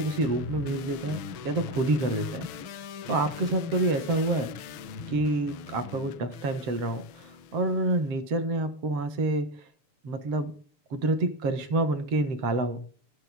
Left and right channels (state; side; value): late; left; 7.0 ms